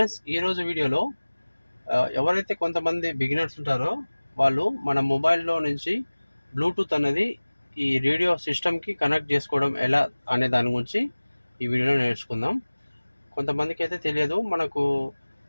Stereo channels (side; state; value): both; inverted; correlation -1.00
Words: ఈరోజు వీడియోలో ఎవరైతే కొంతమంది బిగినర్స్ ఉంటారో వాళ్ళు మన మొబైల్లో నుంచి బ్లూటూత్ అనేది ఈ రేడియో సిస్టమ్కి కనెక్ట్ చేసుకోవడం ఎలా అనే దాని గురించి ఈ వీడియోలో నేర్చుకుందాం. కొంతమందికి అయితే తెలియదు. మనకు